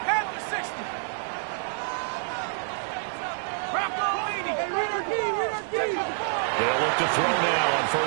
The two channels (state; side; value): silent; left; 55 dB below the other